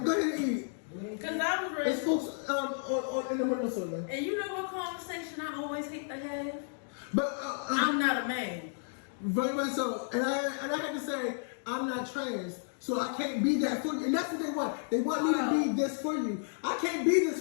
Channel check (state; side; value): silent; right; digital silence